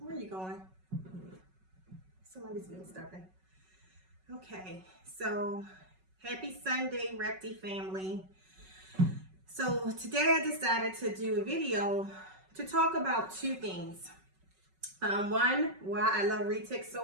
are you going? Somebody's being stubborn. Okay, so happy Sunday, Repti family. So today I decided to do a video to talk about two things. One, why I love Retic so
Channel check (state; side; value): late; left; 5.3 ms